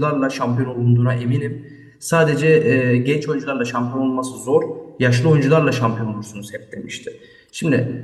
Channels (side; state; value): both; identical; correlation 1.00